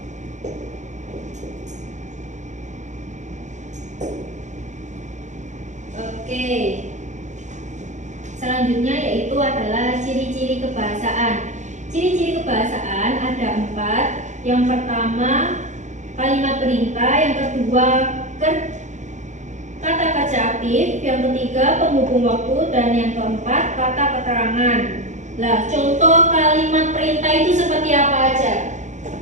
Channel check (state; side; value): late; left; 0.35 ms